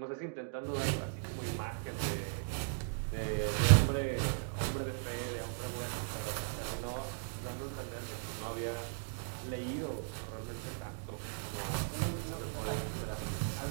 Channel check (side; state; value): left; silent; digital silence